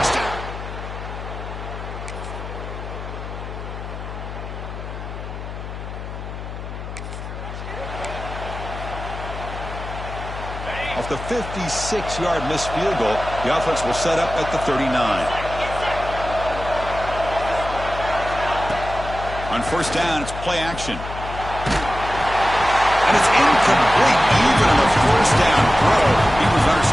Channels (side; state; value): left; noise; hum, 9 dB below the sound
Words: Off the 56-yard missed field goal, the offense will set up at the 39. On first down, it's play action. And it's incomplete. Even on the first down throw, he was under